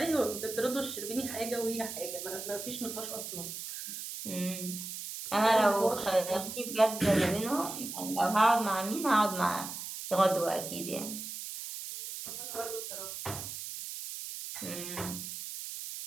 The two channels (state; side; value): noise; right; hiss, 8 dB below the sound